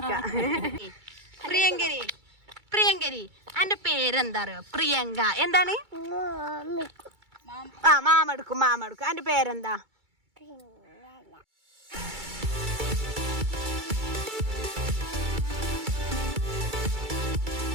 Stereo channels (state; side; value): late; left; 2.3 ms